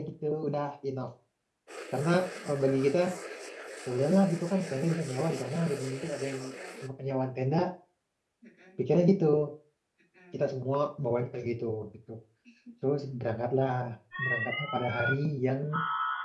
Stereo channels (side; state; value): both; identical; correlation 1.00